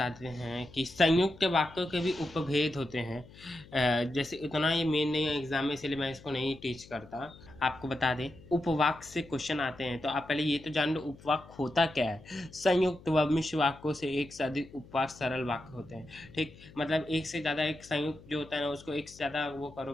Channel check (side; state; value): left; noise; hum, 21 dB below the sound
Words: हैं कि संयुक्त वाक्यों के भी उपभेद होते हैं। जैसे इतना ये मेन नहीं है एग्जाम में, इसलिए मैं इसको नहीं टीच करता। आपको बता दें उपवाक्य से क्वेश्चन आते हैं, तो आप पहले ये तो जान लो उपवाक्य होता क्या है। संयुक्त व मिश्र वाक्यों से एक से अधिक उपवाक्य सरल वाक्य होते हैं, ठीक। मतलब एक से ज़्यादा एक संयुक्त जो होता है ना, उसको एक से ज़्यादा वो